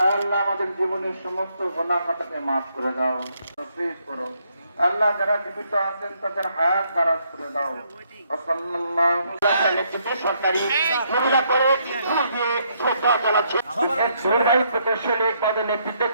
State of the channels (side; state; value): both; inverted; correlation -0.73